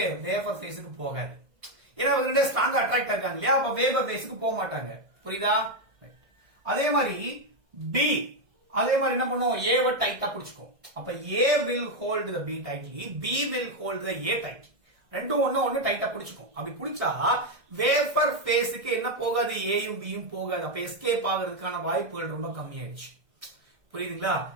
வேப்பர் ஃபேஸ்க்கு போகாது. ஏன்னா இவங்க ரெண்டே ஸ்ட்ராங்கா அட்ராக்ட் ஆகாங்க இல்லையா? அப்ப வேப்பர் ஃபேஸ்க்கு போக மாட்டாங்க. புரியுதா? அதே மாதிரி B அதே மாதிரி என்ன பண்ணும்? A வ டைட்டா பிடிச்சுக்கும். அப்ப A will hold the B tightly, B will hold the A tightly. ரெண்டும் ஒண்ணு டைட்டா பிடிச்சுக்கும். அப்படி பிடிச்சா வேப்பர் ஃபேஸ்க்கு என்ன போகாது? ஏயும் பியும் போகாது. அப்ப எஸ்கேப் ஆகிறதுக்கான வாய்ப்புகள் ரொம்ப கம்மியாயிடுச்சு. புரியுதுங்களா?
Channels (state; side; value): late; left; 1.6 ms